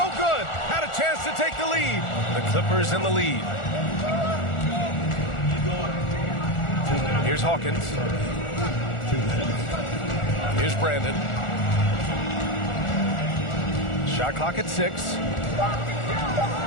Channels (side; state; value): right; late; 1.4 ms